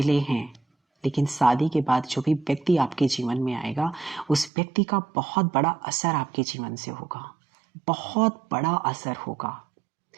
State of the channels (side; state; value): left; drops out; at 4.5 s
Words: हैं, लेकिन शादी के बाद जो भी व्यक्ति आपके जीवन में आएगा, उस व्यक्ति का बहुत बड़ा असर आपके जीवन से होगा, बहुत बड़ा असर होगा।